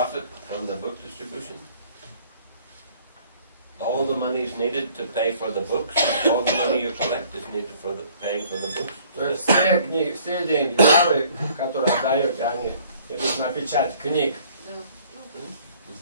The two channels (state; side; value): inverted; both; correlation -0.57